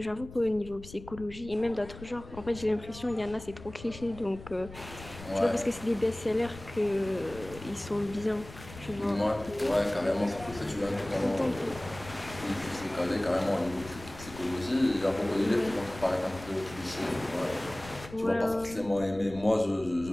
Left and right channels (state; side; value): noise; left; rumble, 16 dB below the sound